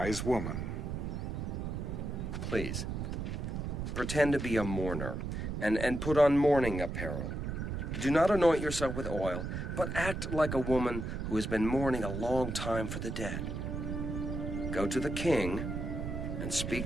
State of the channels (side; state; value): right; noise; rumble, 4 dB below the sound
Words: woman. Please, pretend to be a mourner, and put on mourning apparel. Do not anoint yourself with oil, but act like a woman who has been mourning a long time for the dead. Go to the king, and